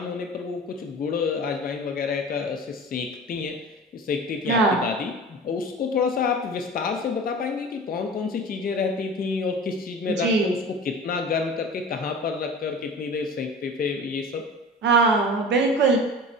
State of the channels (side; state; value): both; normal; correlation 0.37